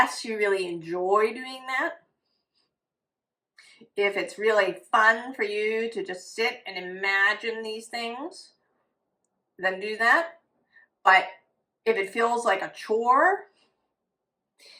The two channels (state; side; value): identical; both; correlation 1.00